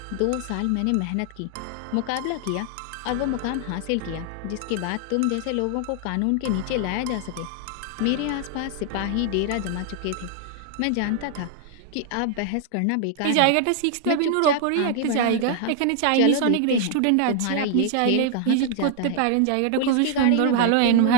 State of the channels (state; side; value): different; both; correlation 0.00